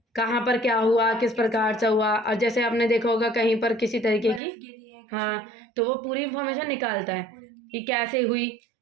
कहाँ पर क्या हुआ, किस प्रकार से हुआ। और जैसे आपने देखा होगा कहीं पर किसी तरीके की, हाँ, तो वो पूरी इंफॉर्मेशन निकालता है कि कैसे हुई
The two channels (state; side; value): drops out; left; at 4.4 s